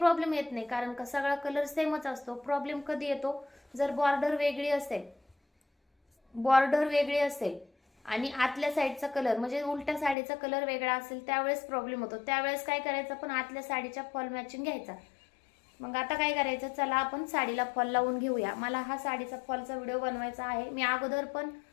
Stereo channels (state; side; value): drops out; right; at 10.2 s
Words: येत नाही, कारण का सगळा कलर सेमच असतो। प्रॉब्लेम कधी येतो, जर बॉर्डर वेगळी असेल आणि आतल्या साईडचा कलर, म्हणजे उलट्या साडीचा कलर वेगळा असेल, त्यावेळेस प्रॉब्लेम होतो। त्यावेळेस काय करायचं, आपण आतल्या साडीच्या फॉल मॅचिंग घ्यायचा, मग आता काय करायचं, चला आपण साडीला फॉल लावून घेऊया. मला हा साडीचा फॉलचा व्हिडिओ बनवायचा आहे. मी अगोदर पण